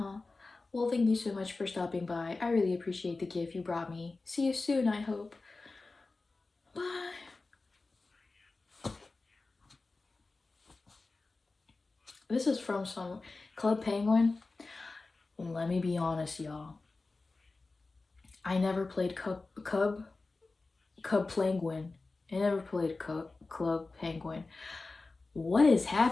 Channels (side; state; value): right; quieter; 3.6 dB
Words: Well, thank you so much for stopping by. I really appreciate the gift you brought me. See you soon, I hope. Bye. This is from some Club Penguin. Let me be honest, y'all. I never played Cub Penguin. I never played Club Penguin. What is